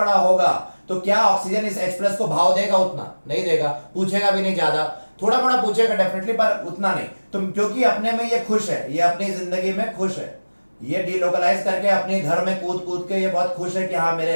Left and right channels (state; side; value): inverted; both; correlation -1.00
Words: होगा तो क्या ऑक्सीजन इस H+ को भाव देगा? उतना नहीं देगा, पूछेगा भी नहीं, ज्यादा थोड़ा मोड़ा पूछेगा डेफिनेटली, पर उतना नहीं। तो क्योंकि अपने में ये खुश है, ये अपनी जिंदगी में खुश है, ये डीलोकलाइज करके अपने घर में कूद कूद के ये बहुत खुश है कि हाँ मेरे